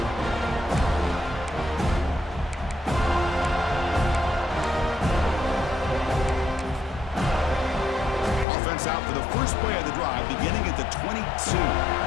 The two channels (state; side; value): drops out; right; at 8.5 s